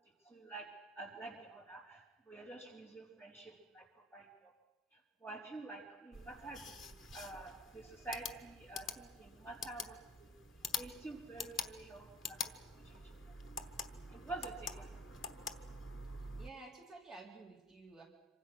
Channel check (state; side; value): normal; both; correlation 0.49